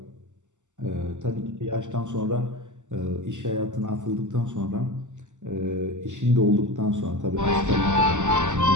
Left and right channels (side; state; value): left; late; 0.85 ms